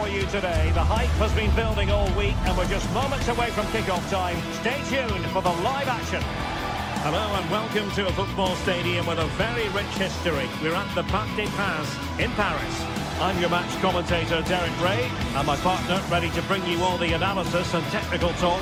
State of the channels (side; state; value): both; identical; correlation 1.00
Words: you today. The hype has been building all week and we're just moments away from kick-off time. Stay tuned for the live action. Hello and welcome to a football stadium with a very rich history. We're at the Parc des Princes in Paris. I'm your match commentator, Derek Ray, and my partner, ready to bring you all the analysis and technical